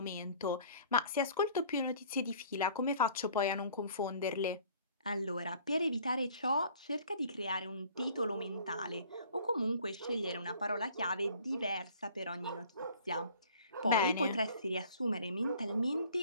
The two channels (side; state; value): both; inverted; correlation -0.52